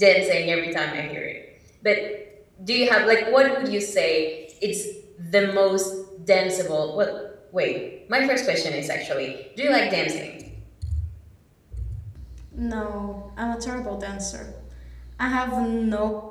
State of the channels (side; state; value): both; identical; correlation 1.00